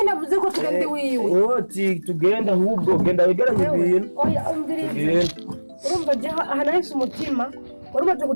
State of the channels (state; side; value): inverted; both; correlation -1.00